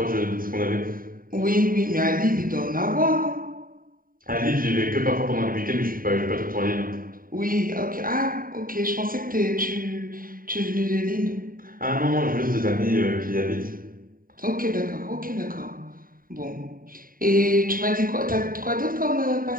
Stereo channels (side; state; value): left; late; 0.41 ms